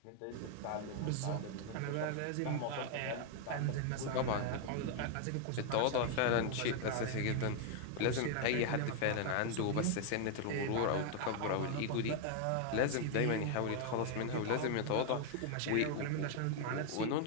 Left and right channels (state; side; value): different; both; correlation 0.00